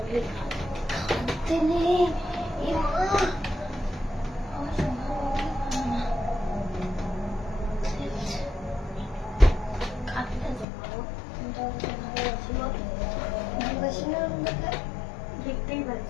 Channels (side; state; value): right; drops out; at 10.7 s